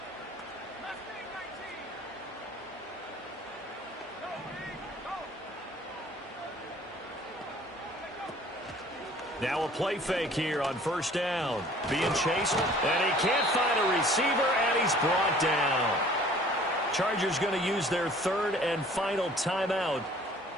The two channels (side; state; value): both; normal; correlation 0.52